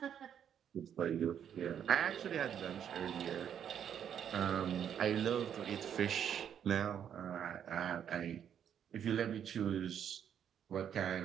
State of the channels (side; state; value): left; quieter; 8.9 dB